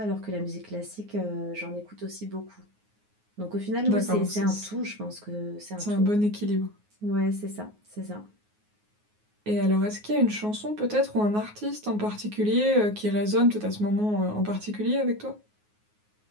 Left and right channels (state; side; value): late; left; 9.5 ms